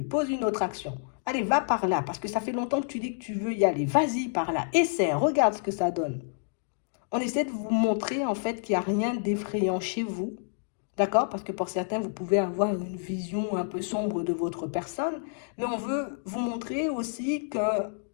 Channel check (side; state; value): right; silent; digital silence